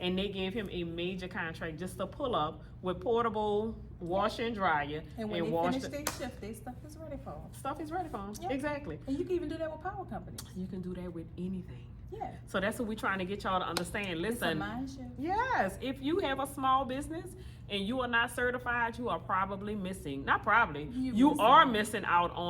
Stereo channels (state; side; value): identical; both; correlation 1.00